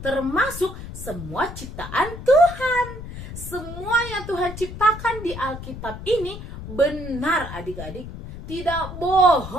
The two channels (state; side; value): noise; left; rumble, 11 dB below the sound